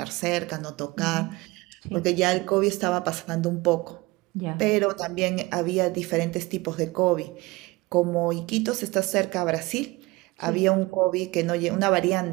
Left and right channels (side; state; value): left; quieter; 22.2 dB